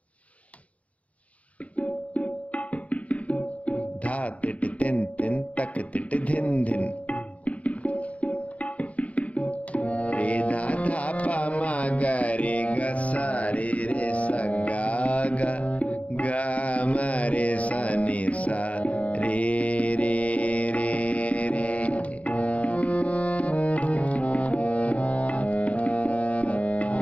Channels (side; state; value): right; late; 0.066 ms